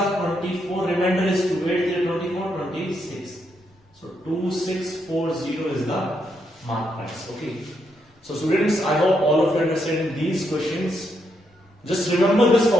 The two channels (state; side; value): normal; both; correlation 0.79